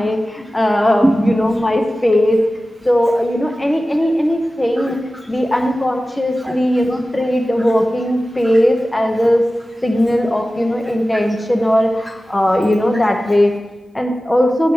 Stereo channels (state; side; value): normal; both; correlation 0.95